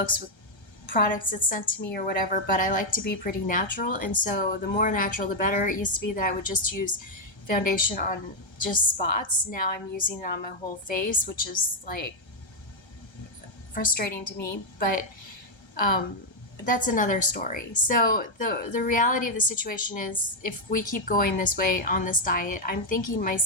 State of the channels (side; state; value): right; late; 1.3 ms